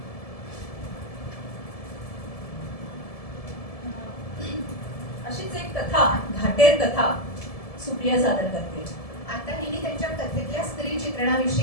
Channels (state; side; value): late; right; 1.7 ms